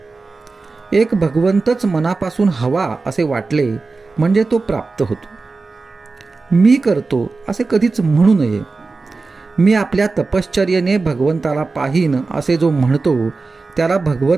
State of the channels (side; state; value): left; quieter; 3.9 dB